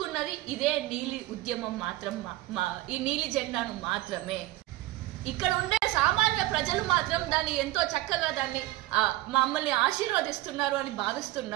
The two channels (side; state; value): left; quieter; 17.1 dB